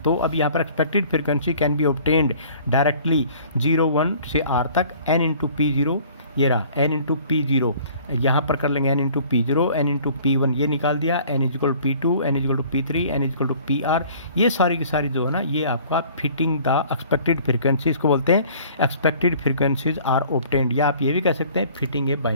तो अब यहाँ पर expected frequency can be obtained directly 0 1 से r तक n इंटू P0, ये रहा n इंटू P0, यहाँ पर कर लेंगे n into P0, n into P1 ये निकाल दिया, n equal to P2, n equal to P3, n equal to PR। ये सारी की सारी जो है ना, ये आपका फिटिंग द एक्सपेक्टेड फ्रीक्वेंसीज को बोलते हैं, एक्सपेक्टेड फ्रीक्वेंसीज आर ऑब्टेन्ड, या आप ये भी कह सकते हैं फिटिंग ए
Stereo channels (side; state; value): both; inverted; correlation -0.52